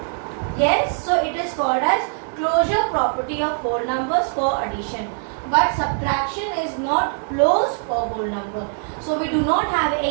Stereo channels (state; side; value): silent; left; 64 dB below the other